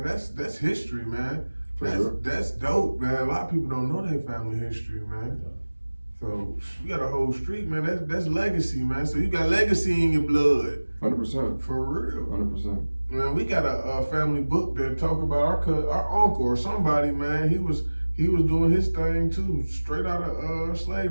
That's history, man. That's dope, man. A lot of people don't know their family history, man. So you got a whole street, man. That's legacy, man. So you got legacy in your blood. 100%. For real. 100%. Man, we got a family book that talk about our uncle or somebody, man. He was doing his thing too, straight out of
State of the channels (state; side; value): inverted; both; correlation -1.00